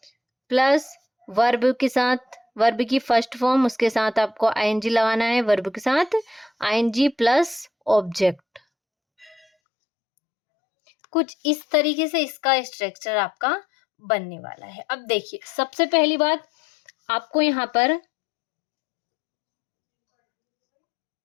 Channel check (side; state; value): right; drops out; at 9.5 s